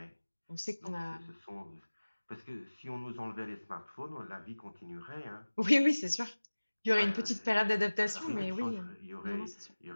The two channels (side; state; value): both; inverted; correlation -1.00